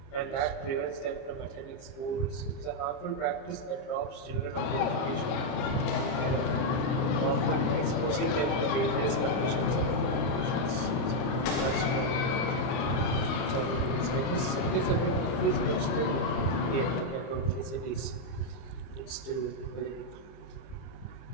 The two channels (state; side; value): late; right; 30 ms